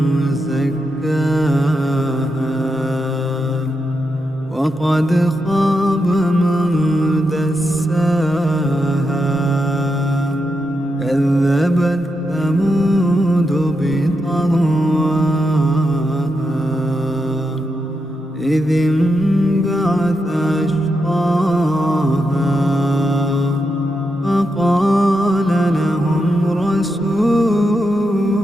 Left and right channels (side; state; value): both; normal; correlation 0.85